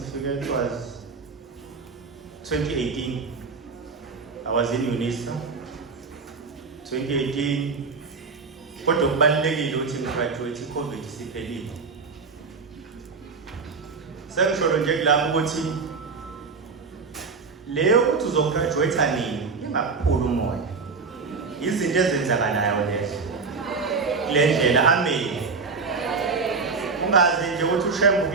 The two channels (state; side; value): quieter; left; 4.7 dB